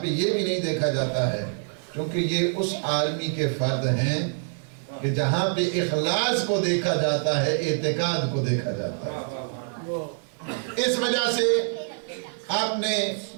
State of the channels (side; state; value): left; silent; 57 dB below the other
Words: یہ بھی نہیں دیکھا جاتا ہے کیونکہ یہ اس عالمی کے فرد ہیں کہ جہاں پہ اخلاص کو دیکھا جاتا ہے، اعتقاد کو دیکھا جاتا ہے۔ اس وجہ سے آپ نے